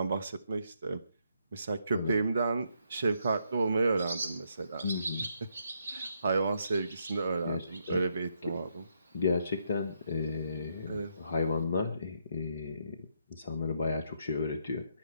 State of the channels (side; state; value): both; inverted; correlation -0.76